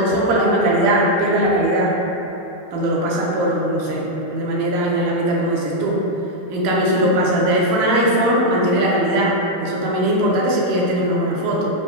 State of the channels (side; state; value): left; late; 14 ms